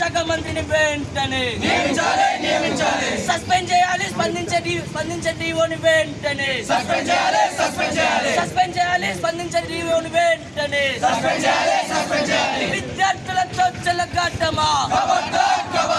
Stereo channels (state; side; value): identical; both; correlation 1.00